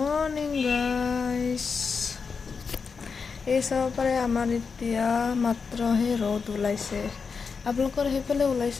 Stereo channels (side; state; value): right; quieter; 5.3 dB